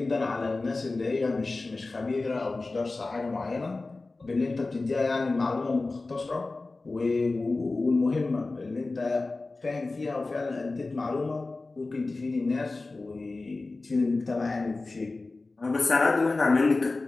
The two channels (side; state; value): right; quieter; 3.4 dB